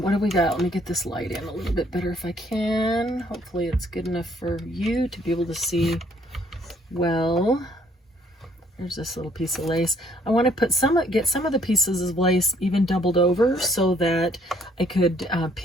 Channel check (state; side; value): normal; both; correlation 0.64